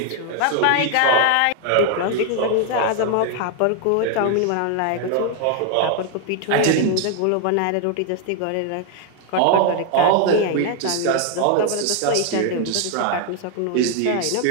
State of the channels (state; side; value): different; both; correlation 0.00